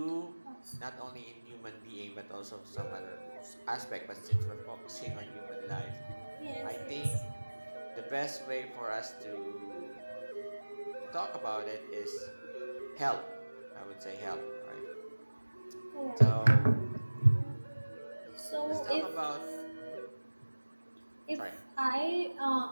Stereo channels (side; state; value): both; inverted; correlation -1.00